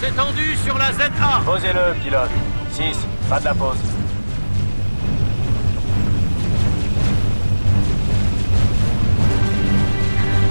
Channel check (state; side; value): inverted; both; correlation -1.00